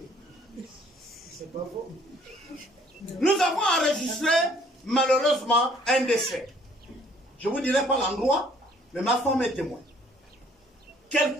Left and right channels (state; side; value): normal; both; correlation 0.60